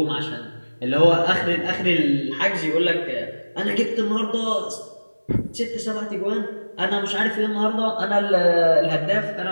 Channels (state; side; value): inverted; both; correlation -1.00